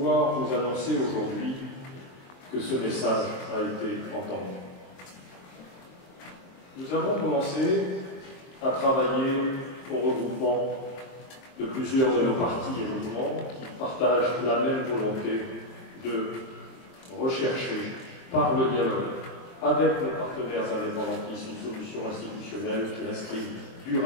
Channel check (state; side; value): late; right; 23 ms